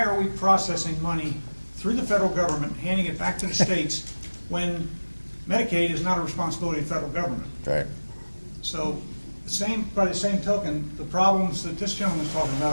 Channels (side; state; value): both; inverted; correlation -1.00